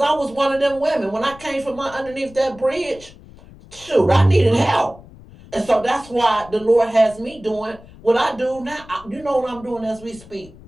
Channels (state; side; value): noise; left; rumble, 21 dB below the sound